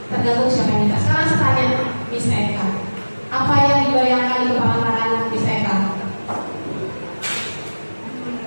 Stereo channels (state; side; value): inverted; both; correlation -1.00